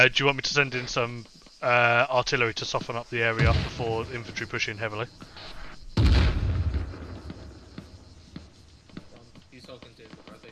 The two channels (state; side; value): identical; both; correlation 1.00